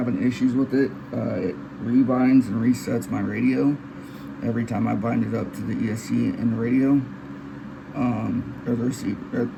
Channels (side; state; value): both; identical; correlation 1.00